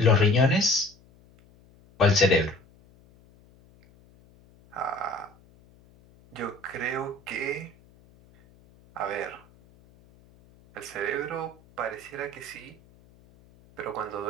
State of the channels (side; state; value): left; noise; hum, 28 dB below the sound